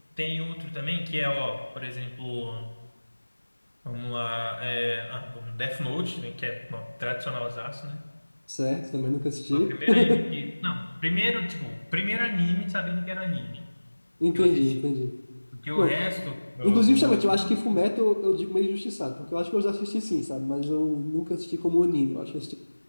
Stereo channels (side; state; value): both; inverted; correlation -1.00